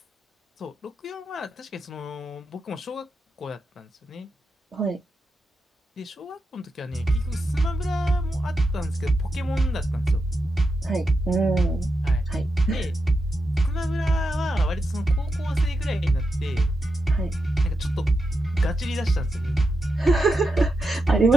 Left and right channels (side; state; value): both; normal; correlation 0.87